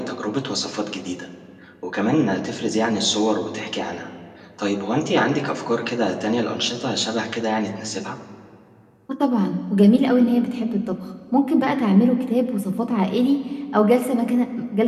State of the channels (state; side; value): identical; both; correlation 1.00